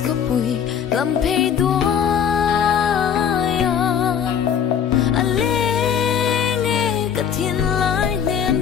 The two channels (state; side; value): quieter; right; 8.2 dB